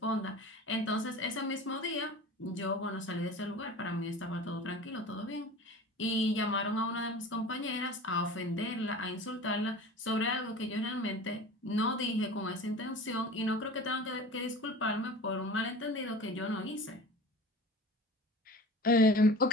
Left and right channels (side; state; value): both; normal; correlation 0.38